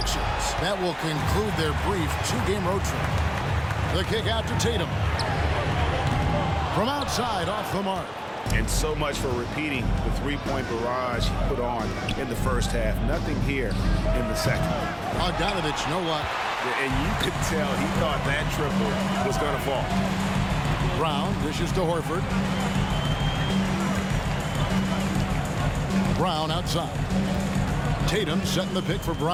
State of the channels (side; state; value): both; identical; correlation 1.00